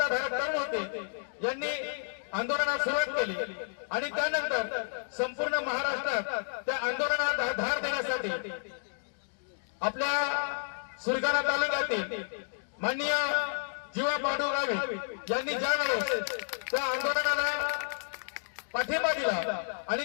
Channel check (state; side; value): silent; right; digital silence